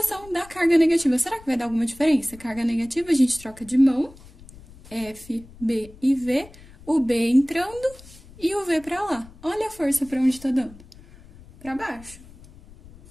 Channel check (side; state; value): left; noise; rumble, 21 dB below the sound